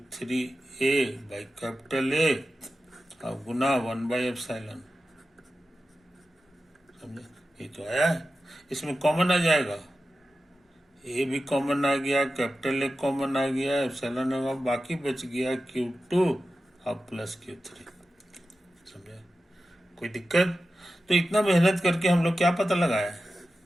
by capital A और गुना 1/एप्सिलॉन, समझे? ये तो आया है, इसमें कॉमन आ जाएगा, ए भी कॉमन आ गया, कैपिटल ए कॉमन आ गया, एप्सिलॉन होगा, बाकी बच गया Q2 और प्लस Q3, समझे? कोई दिक्कत? तो इतना मेहनत करके हम लोग क्या पता लगाया है?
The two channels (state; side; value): normal; both; correlation 0.93